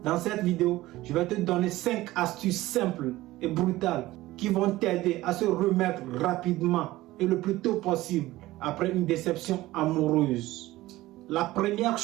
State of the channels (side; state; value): left; quieter; 17.3 dB